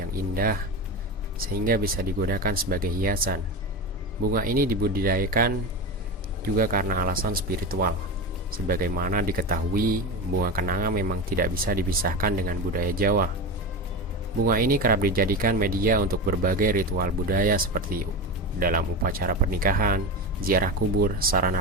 yang indah, sehingga bisa digunakan sebagai hiasan, bunga ini dibudidayakan juga karena alasan spiritual. Sebagaimana diketahui, bunga kenanga memang tidak bisa dipisahkan dengan budaya Jawa. Bunga ini kerap dijadikan media untuk berbagai ritual budaya seperti dalam upacara pernikahan, ziarah kubur,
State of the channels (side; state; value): both; normal; correlation 0.22